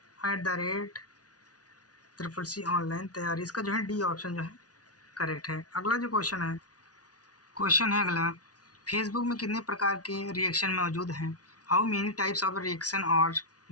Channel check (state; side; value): late; right; 0.68 ms